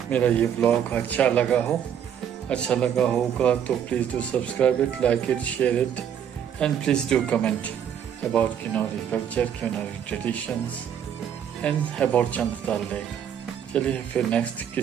मेरा ये ब्लॉग अच्छा लगा होगा तो please do subscribe it, like it, share it and please do comment about Kinnauri culture, Kinnauri traditions and about Chand dal lake. चलिए फिर नेक्स्ट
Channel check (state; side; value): quieter; left; 8.9 dB